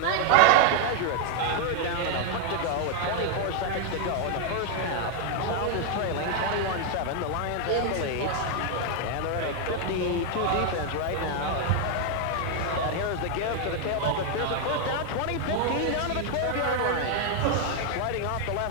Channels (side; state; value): both; different; correlation 0.01